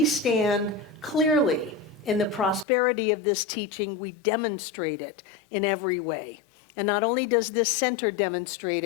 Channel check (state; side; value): drops out; right; at 2.7 s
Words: stand clearly in the prosperity of this teaching. We demonstrate it in every way. And not only does this center demonstrate